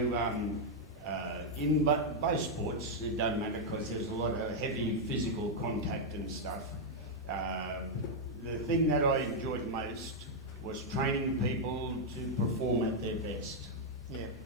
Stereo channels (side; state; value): both; normal; correlation -0.03